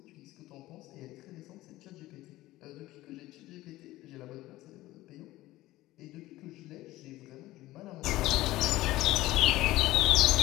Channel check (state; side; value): quieter; right; 17.1 dB